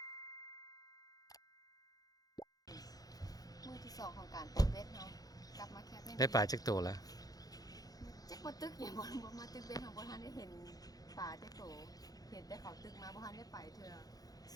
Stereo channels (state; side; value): late; right; 0.18 ms